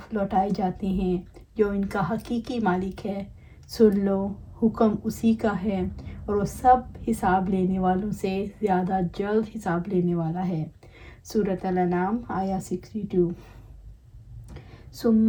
लौटाए जाते हैं जो इनका हकीकी मालिक है। सुन लो, हुक्म उसी का है और वो सब हिसाब लेने वालों से ज़्यादा जल्द हिसाब लेने वाला है। सूरत अल-अनाम आया 62।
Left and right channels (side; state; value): both; identical; correlation 1.00